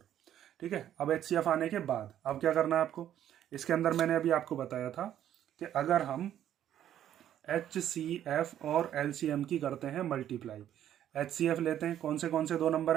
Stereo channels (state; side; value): quieter; left; 11.0 dB